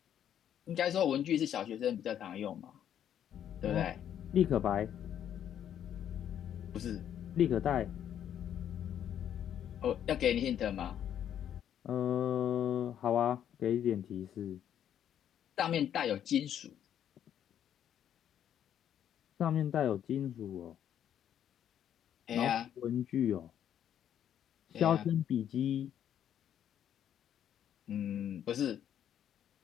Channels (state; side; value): quieter; right; 9.9 dB